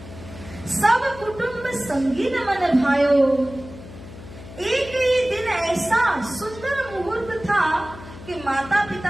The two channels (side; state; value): left; noise; hum, 15 dB below the sound